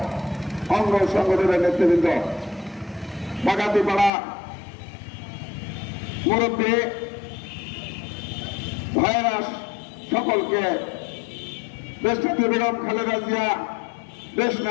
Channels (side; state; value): right; drops out; at 4.1 s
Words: অঙ্গ সংগঠনের নেতৃবৃন্দ, বাগাতিপাড়া মুরব্বী ভাইয়েরা, সকলকে দেশনেত্রী বেগম খালেদা জিয়া, দেশ